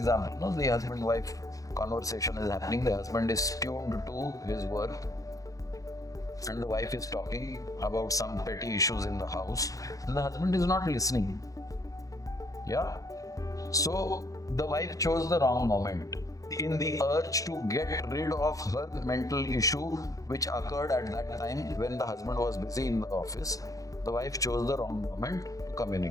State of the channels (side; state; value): right; late; 0.17 ms